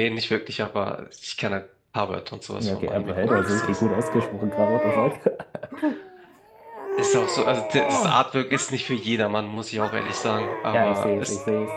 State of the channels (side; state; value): both; identical; correlation 1.00